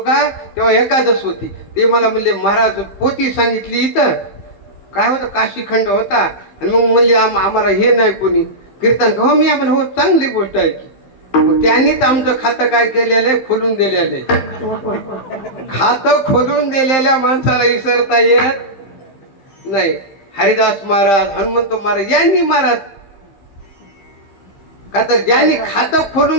तेव्हा एकादश होती. ते मला म्हणले महाराज पोथी सांगितली इथं काय होतं काशीखंड होता. आणि मग म्हणले आम्हाला हे नाही कोणी कीर्तन. हो मी आपण हो चांगली गोष्ट आहे की. मग त्यांनीच आमचं खातं काय केलेलं आहे खोलून दिलेलं आहे. खातं खोलून दिलेल्या माणसाला विसरता येत नाही. हरिदास महाराज हनुमंत महाराज यांनी महाराज का तर ज्यांनी खातं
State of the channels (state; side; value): late; right; 15 ms